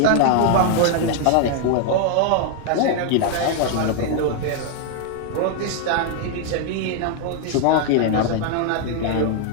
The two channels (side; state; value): both; different; correlation 0.00